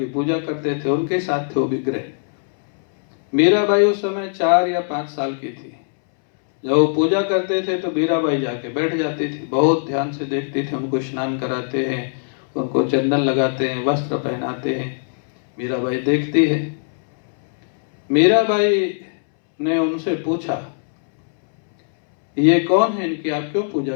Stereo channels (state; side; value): silent; right; 65 dB below the other